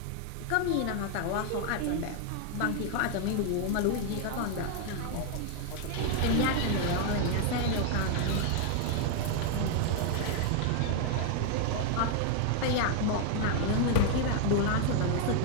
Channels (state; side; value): different; both; correlation 0.00